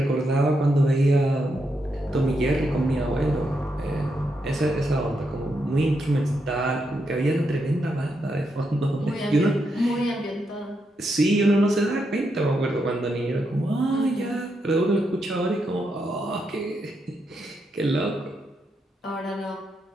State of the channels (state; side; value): normal; both; correlation 0.82